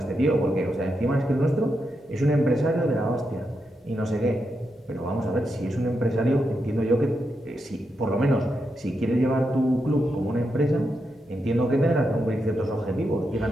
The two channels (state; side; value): normal; both; correlation 0.84